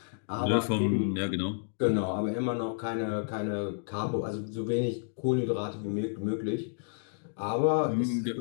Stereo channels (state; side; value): silent; right; digital silence